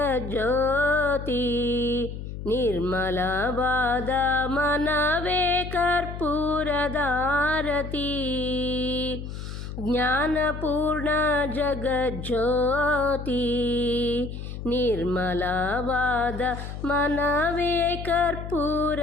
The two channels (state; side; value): noise; left; hum, 8 dB below the sound